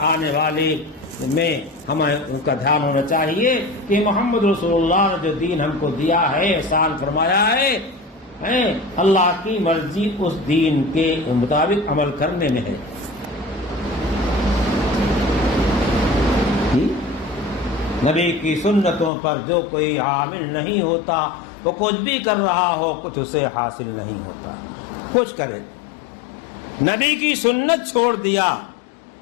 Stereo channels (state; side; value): drops out; right; at 19.1 s